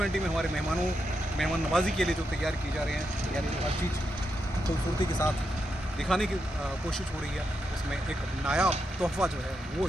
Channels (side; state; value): both; normal; correlation 0.84